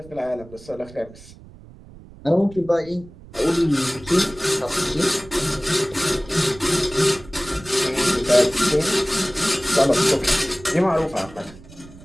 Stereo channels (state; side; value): noise; right; rumble, 20 dB below the sound